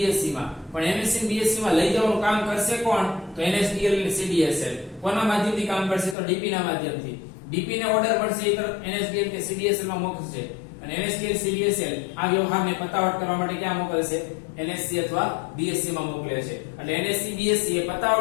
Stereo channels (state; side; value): drops out; right; at 6.2 s